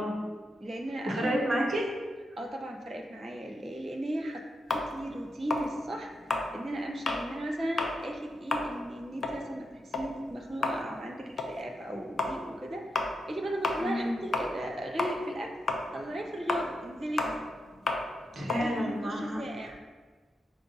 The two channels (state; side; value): normal; both; correlation 0.85